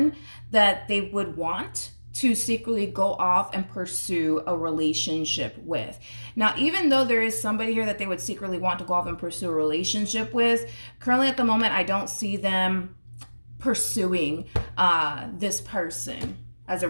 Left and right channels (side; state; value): both; inverted; correlation -1.00